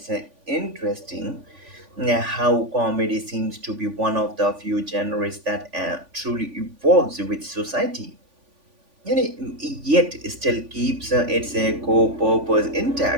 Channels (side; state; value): left; late; 3.5 ms